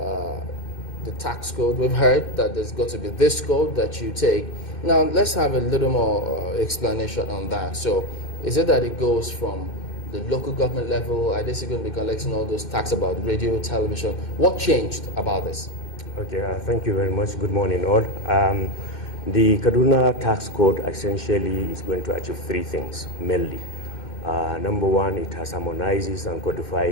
the tax code. We've heard that there's got to be this code that you take. Now, let's have a little more explanation on that. So, is it that it goes from the local government level? Are they still going to be collecting all those tax about radio, television? What changed about this? Okay, thank you very much. Good morning, all. The Kaduna tax code essentially is going to achieve three things, mainly. Number one, it has harmonizes and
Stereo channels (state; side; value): late; right; 2.6 ms